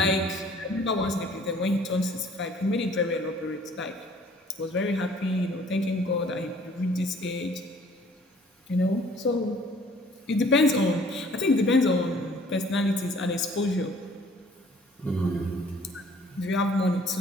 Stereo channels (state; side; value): normal; both; correlation 0.55